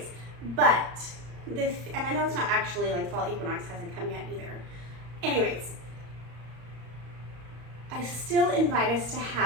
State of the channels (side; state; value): left; late; 34 ms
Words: but and I know it's not actually like fall equinox hasn't come yet either. Anyways, I still invite us to